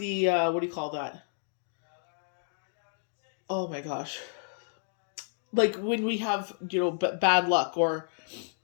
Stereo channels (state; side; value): silent; right; digital silence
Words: do you call that? Oh my gosh. Like when we have, bad luck or